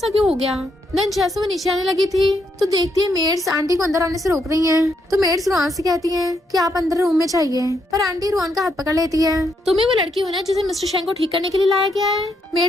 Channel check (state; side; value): normal; both; correlation 0.77